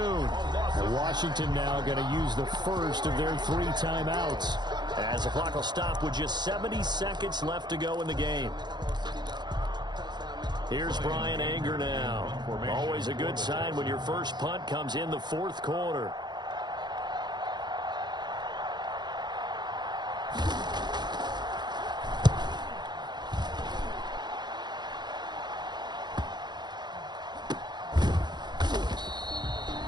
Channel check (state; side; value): late; left; 0.21 ms